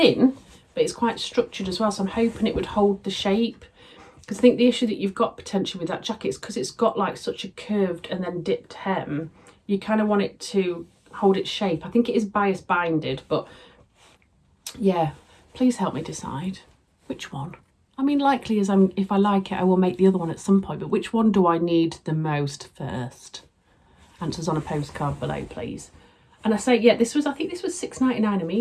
but it's quite structured as well. So I'm hoping it would hold the shape. Because I think the issue that you've got potentially with that jacket is because it's got like such a curved and then dipped hem, you kind of want it to hold its shape. I think it is bias binded, but yeah, please help me decide which one. I mean, likely as if I like it, I will make the other one at some point, but which one do I need the most first? Answers on a postcard below, please. And I say, yeah, I think this was £6.99 a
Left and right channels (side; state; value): both; identical; correlation 1.00